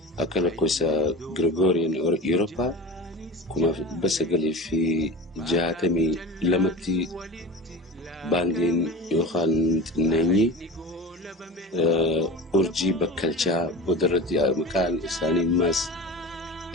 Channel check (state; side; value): normal; both; correlation 0.34